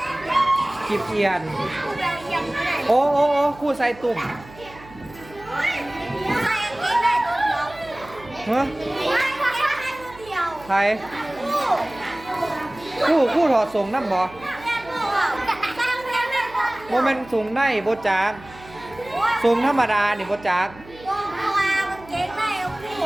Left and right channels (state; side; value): noise; right; hum, 20 dB below the sound